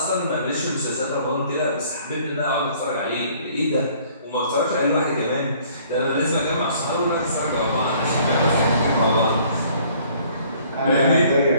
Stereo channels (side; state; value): both; inverted; correlation -0.58